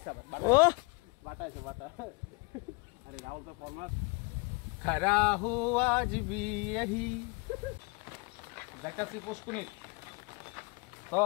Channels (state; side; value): quieter; right; 29.4 dB